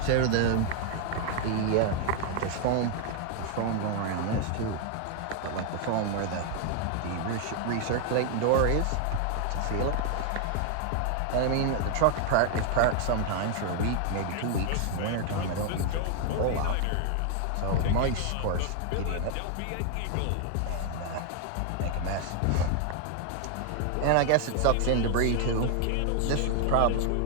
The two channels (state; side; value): different; both; correlation 0.00